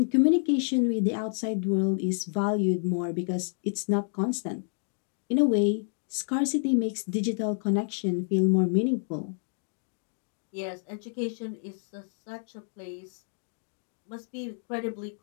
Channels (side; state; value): right; silent; digital silence